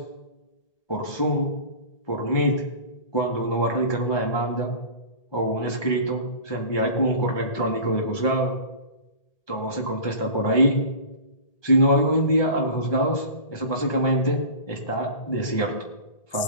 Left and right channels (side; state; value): right; late; 1.8 ms